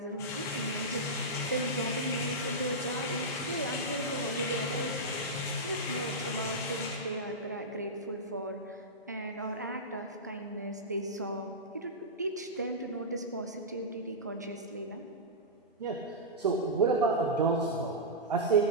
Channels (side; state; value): both; normal; correlation -0.11